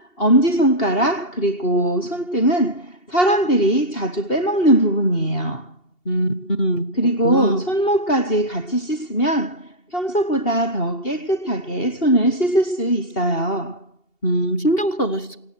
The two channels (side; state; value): right; late; 2.8 ms